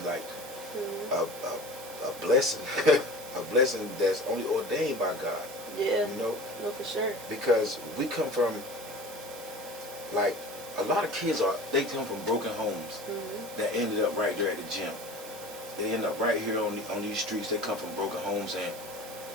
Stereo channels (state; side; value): normal; both; correlation 0.38